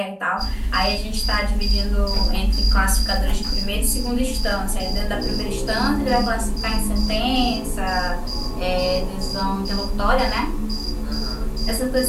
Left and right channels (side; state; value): both; identical; correlation 1.00